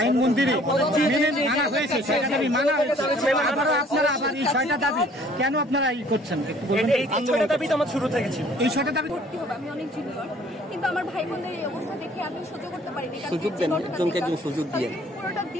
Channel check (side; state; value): both; normal; correlation 0.56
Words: আইন মন্দিরে মানা হয়েছে, 6টা দাবি মানা হয়েছে, আপনারা আবার এই 6টা দাবি কেন আপনারা এই করছেন? এই 6টা দাবি তো আমার শুরু থেকে ছিল। এই 6টা দাবি ভর্তি হবে, আমি অনেক জুনিয়র, কিন্তু আমার ভাই বোনদের এই অবস্থা দেখে আমি সহ্য করতে পারিনি। সুযোগ দেন, একজনকে একজন সুযোগ দিয়ে পুরোটা